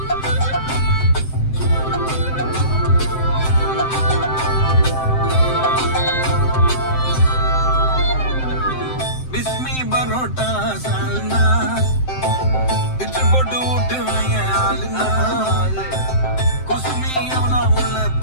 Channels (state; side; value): late; right; 7.7 ms